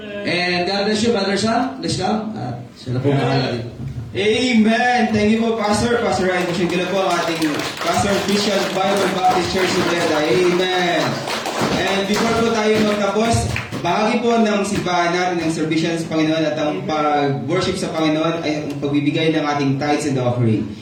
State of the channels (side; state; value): both; identical; correlation 1.00